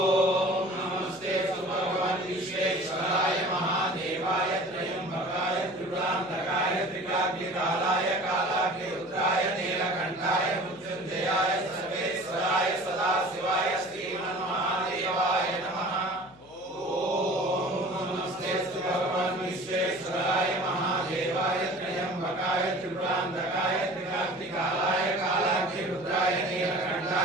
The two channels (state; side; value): noise; left; hum, 24 dB below the sound